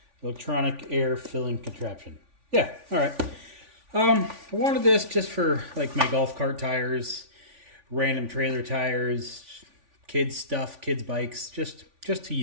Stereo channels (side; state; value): left; late; 3.5 ms